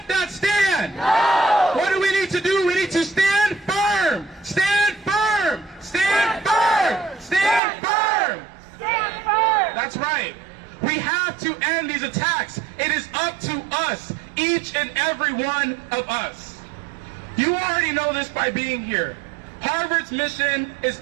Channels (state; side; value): drops out; left; at 7.6 s